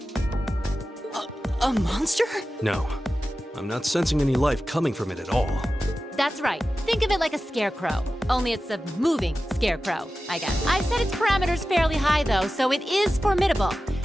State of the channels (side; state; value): both; normal; correlation 0.94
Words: A monster? No, I'm not sensing any life coming from it at all. That's right. Think of it like a scarecrow. Only it's a moving scarecrow, I guess. I've set its parameters fairly high, though, so it is formidable.